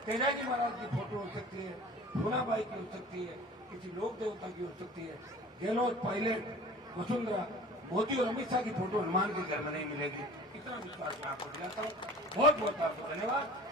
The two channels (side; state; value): both; normal; correlation 0.43